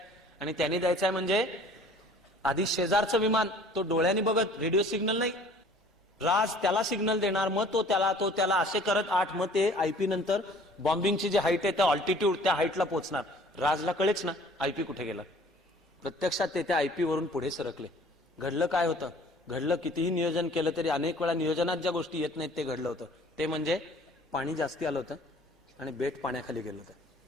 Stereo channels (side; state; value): both; normal; correlation 0.51